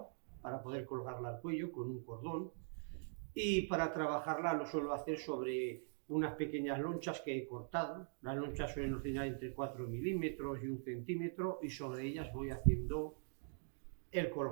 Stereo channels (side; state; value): left; silent; digital silence